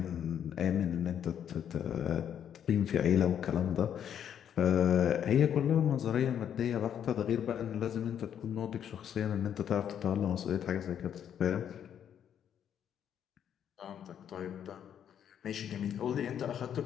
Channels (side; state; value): right; quieter; 9.2 dB